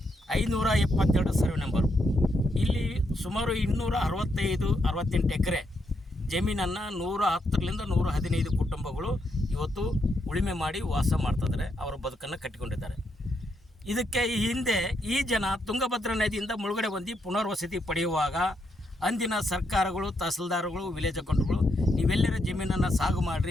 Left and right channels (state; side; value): normal; both; correlation 0.79